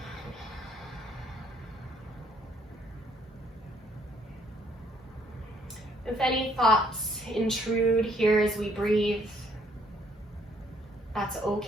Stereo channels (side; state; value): both; normal; correlation 0.65